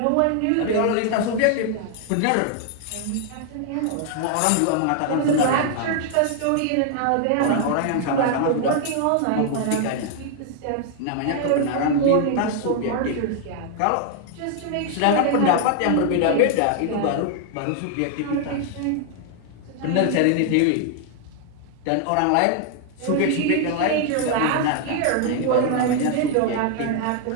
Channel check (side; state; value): both; different; correlation 0.00